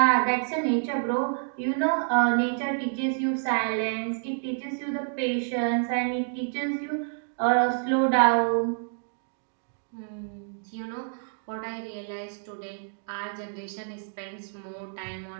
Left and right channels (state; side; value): silent; left; digital silence